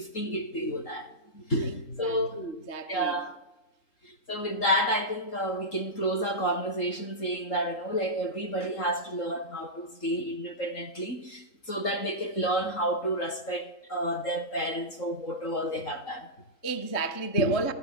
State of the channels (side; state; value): right; late; 3.8 ms